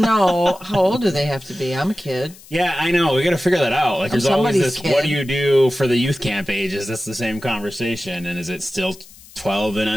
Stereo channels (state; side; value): noise; left; hiss, 22 dB below the sound